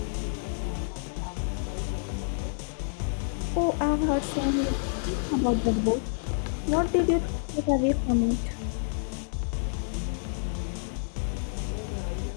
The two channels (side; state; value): right; silent; digital silence